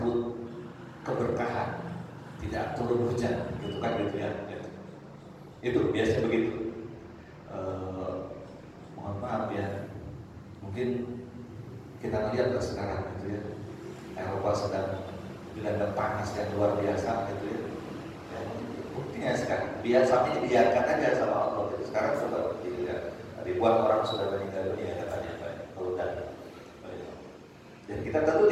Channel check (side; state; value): both; identical; correlation 1.00